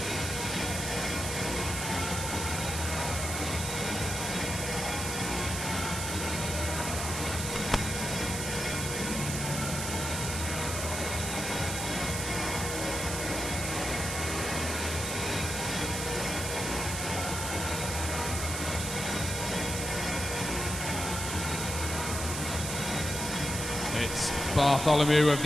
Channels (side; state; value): right; noise; hiss, 4 dB below the sound